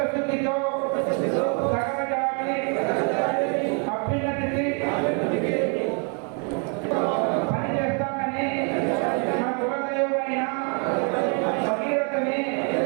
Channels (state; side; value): quieter; left; 38.6 dB